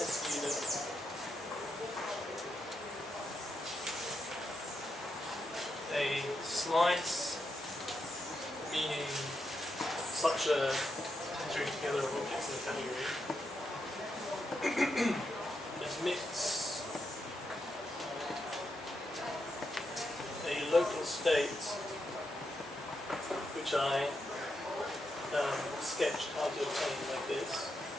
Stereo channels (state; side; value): normal; both; correlation 0.84